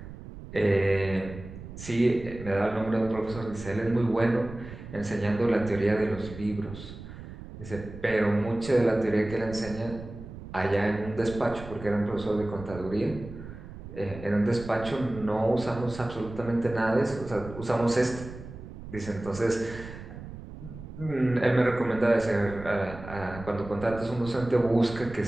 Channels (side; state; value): right; noise; rumble, 13 dB below the sound